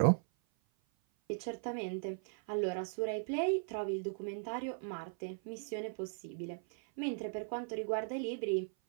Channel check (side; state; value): left; silent; 52 dB below the other